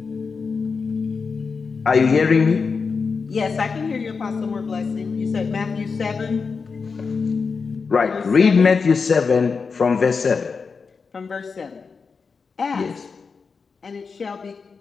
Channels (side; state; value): right; quieter; 5.1 dB